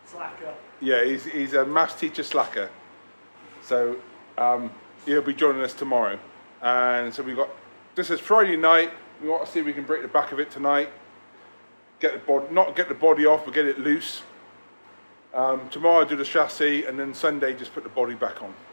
Slacker. Yeah, he's a maths teacher slacker. So he'll be joining us tomorrow. And so this is Friday night. We want to see if we can break the back of it tonight. Not get the body off, but get it loose. Tomorrow I'll do the chassis, and then Sunday just put the body back on.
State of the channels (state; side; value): inverted; both; correlation -1.00